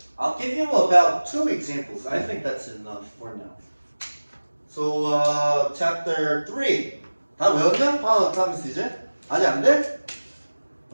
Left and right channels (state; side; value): inverted; both; correlation -1.00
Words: I'll give you about 2 examples. I think that's enough for now. So, chapter 3. 다 외웠냐? polyatomics 이제? 아직 안 돼?